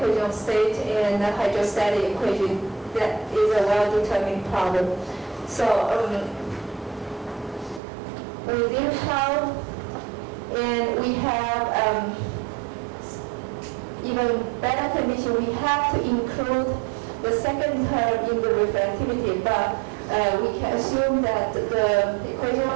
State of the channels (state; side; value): drops out; left; at 7.8 s